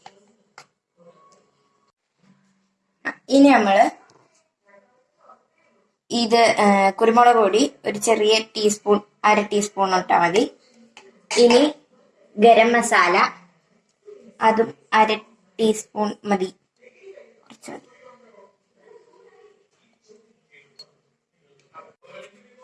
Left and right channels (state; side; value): identical; both; correlation 1.00